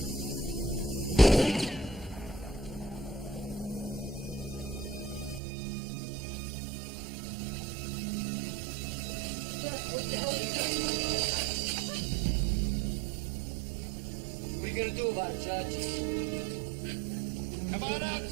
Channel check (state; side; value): drops out; left; at 5.4 s